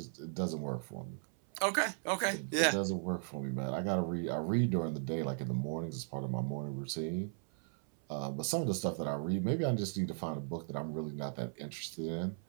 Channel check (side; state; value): left; silent; 53 dB below the other